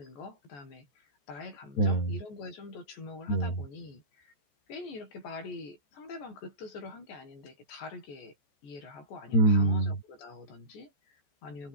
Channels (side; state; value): right; late; 14 ms